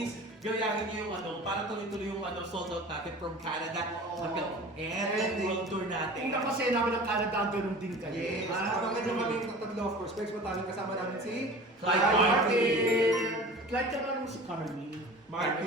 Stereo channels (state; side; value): normal; both; correlation 0.40